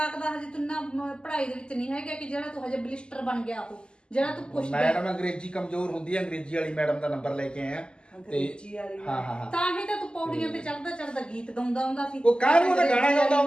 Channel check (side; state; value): right; late; 0.049 ms